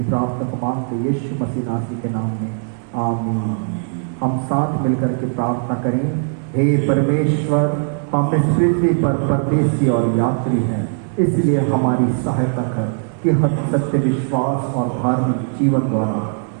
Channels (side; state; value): left; silent; 58 dB below the other